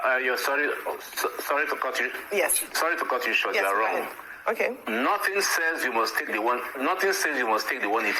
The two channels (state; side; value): identical; both; correlation 1.00